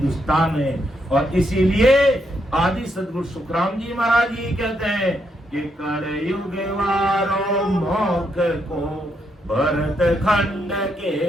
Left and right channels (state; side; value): normal; both; correlation 0.78